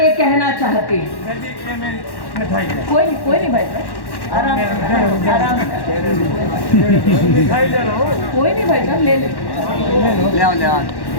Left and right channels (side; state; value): right; late; 1.1 ms